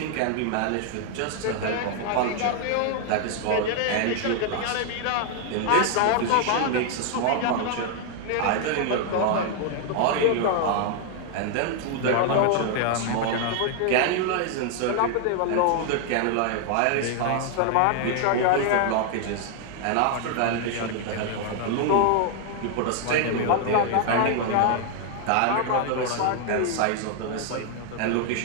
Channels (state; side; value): different; both; correlation 0.00